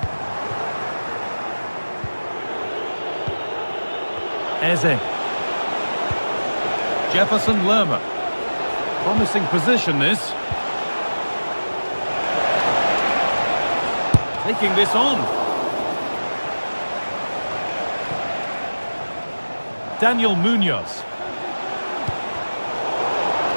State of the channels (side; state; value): both; inverted; correlation -1.00